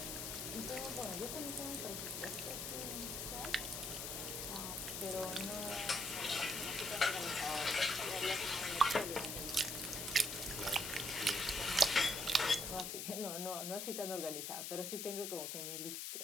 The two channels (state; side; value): noise; left; hiss, 4 dB below the sound